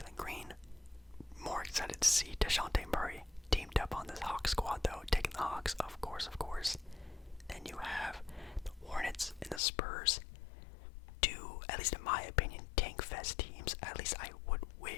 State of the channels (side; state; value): right; drops out; at 9.6 s